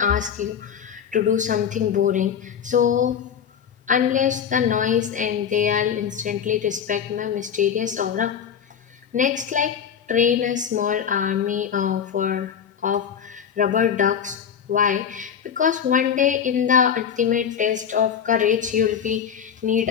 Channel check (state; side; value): quieter; right; 8.0 dB